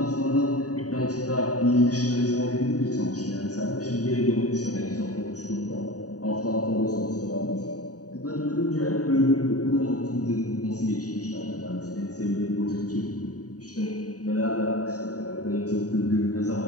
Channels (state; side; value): late; right; 0.67 ms